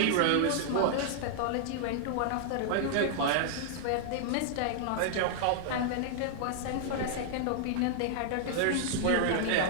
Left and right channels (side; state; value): both; different; correlation -0.01